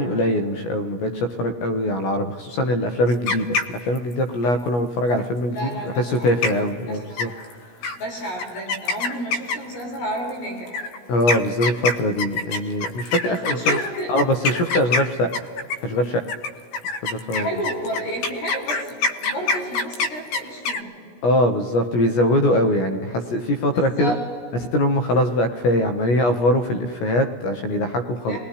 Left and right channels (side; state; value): right; late; 17 ms